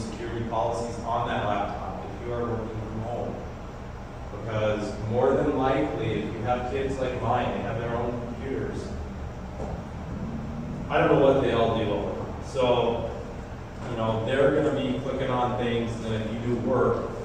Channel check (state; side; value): identical; both; correlation 1.00